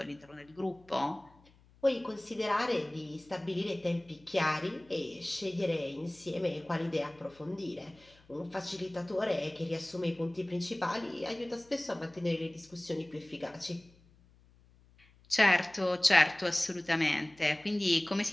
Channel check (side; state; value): left; noise; hum, 28 dB below the sound